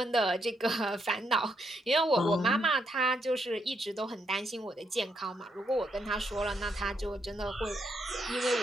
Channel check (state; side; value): normal; both; correlation 0.78